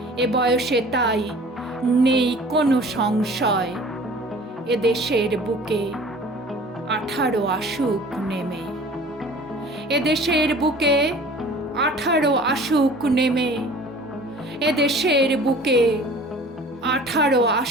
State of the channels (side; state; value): both; normal; correlation 0.46